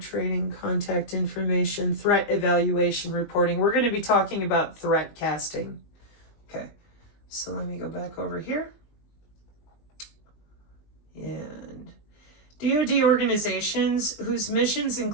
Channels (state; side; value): late; right; 20 ms